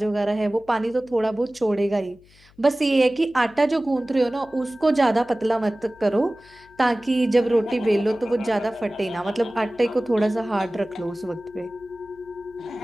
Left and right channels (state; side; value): noise; left; hum, 28 dB below the sound